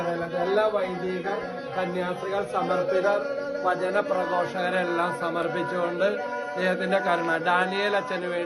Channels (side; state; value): both; identical; correlation 1.00